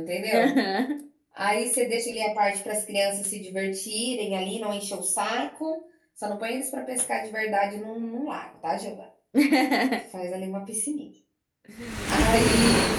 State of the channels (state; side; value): identical; both; correlation 1.00